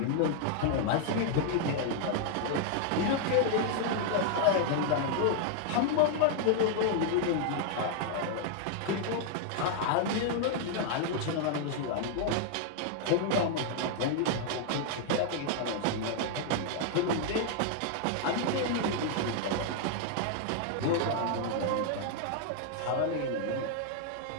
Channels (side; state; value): both; different; correlation 0.00